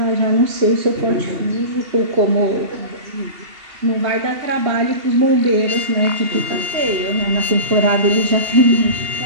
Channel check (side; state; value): left; late; 2.8 ms